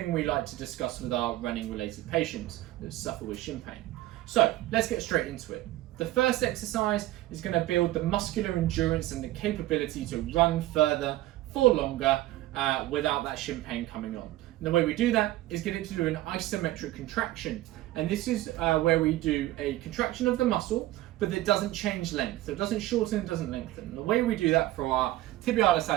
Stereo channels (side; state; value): left; quieter; 16.2 dB